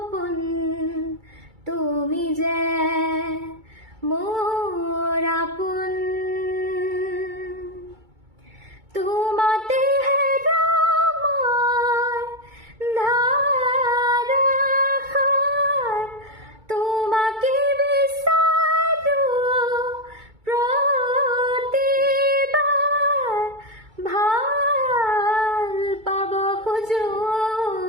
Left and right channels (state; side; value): late; left; 2.3 ms